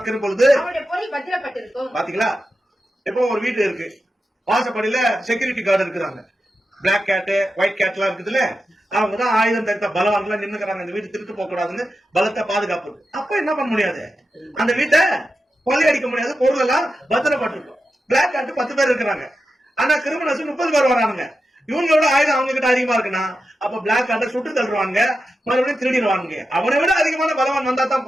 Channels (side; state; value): both; normal; correlation 0.90